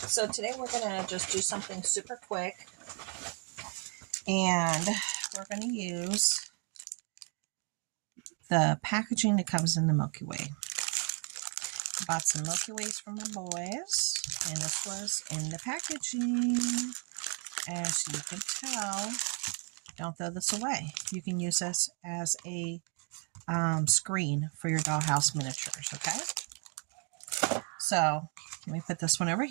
today we're going to just do something super quick. And we're going to use the packaging that comes in the Milky Way. I bought some Milky Ways for my boys. And this was in the packaging. As you can tell, don't throw this away. You can use this as a screen for your Dollhouse Miniatures, okay? So, let me put this one over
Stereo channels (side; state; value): left; quieter; 38.6 dB